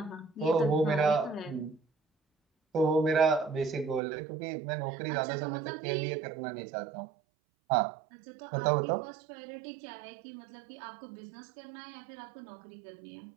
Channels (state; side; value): drops out; left; at 4.0 s